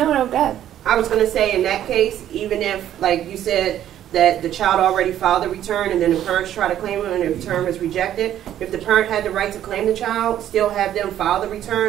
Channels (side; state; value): left; quieter; 11.4 dB